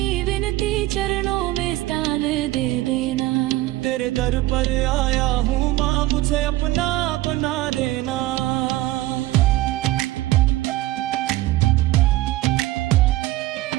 विनती चरणों में स्थान दे देना। तेरे दर पर आया हूँ माँ, मुझे अपना बना देना।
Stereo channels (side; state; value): left; quieter; 17.0 dB